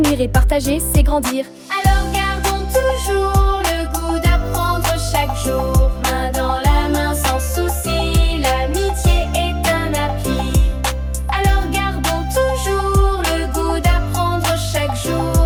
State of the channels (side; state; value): both; identical; correlation 1.00